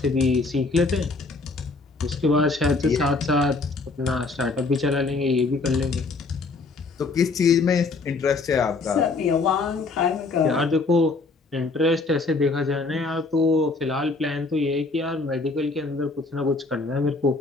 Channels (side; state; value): right; quieter; 3.8 dB